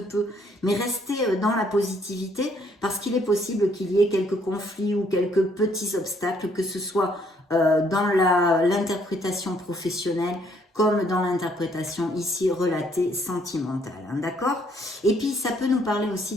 peu. Mais restez dans la positivité, parce qu'il est possible qu'il y ait quelques conflits ou quelques petits obstacles, que ce soit dans l'interprétation professionnelle, comme dans l'interprétation ici relatée sentimentale, hein, d'accord? Et puis ça peut nous parler aussi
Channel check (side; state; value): both; normal; correlation 0.67